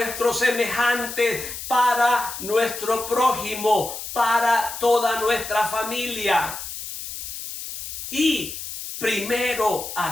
semejante, para nuestro prójimo, para toda nuestra familia. Y primero,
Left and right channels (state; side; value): noise; left; hiss, 8 dB below the sound